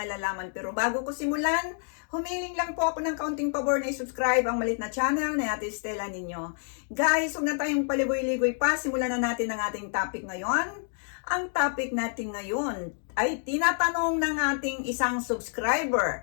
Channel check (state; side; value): silent; right; 59 dB below the other